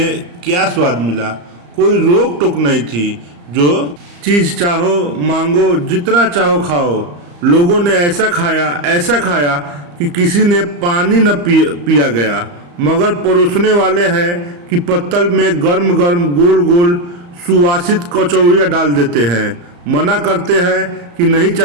क्या स्वाद मिला। कोई रोक टोक नहीं थी। जो चीज़ चाहो मांगो, जितना चाहो खाओ। लोगों ने ऐसा खाया कि किसी ने पानी न पिया गया, मगर परोसने वाले हैं कि पत्तल में गर्म गर्म गोल गोल सुवासित कचौड़ियाँ डाल देते हैं। मना करते हैं कि नहीं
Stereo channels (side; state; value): left; late; 34 ms